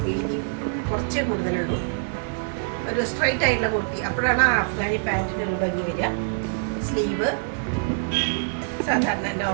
വീതി കുറച്ചേ കൂടുതലുള്ളൂ. ഒരു സ്ട്രൈറ്റ് ആയിട്ടുള്ള കുർത്തി. അപ്പോഴാണ് ആ അഫ്ഗാനി പാൻറ്റിന് ഒരു ഭംഗി വരിക. സ്ലീവ് സാധാരണ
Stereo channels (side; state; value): left; silent; digital silence